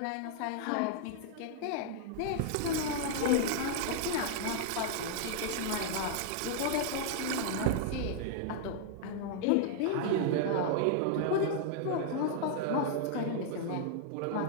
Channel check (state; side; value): different; both; correlation -0.01